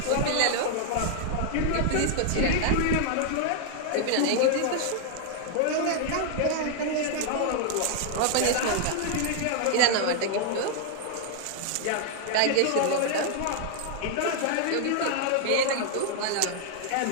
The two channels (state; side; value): different; both; correlation -0.01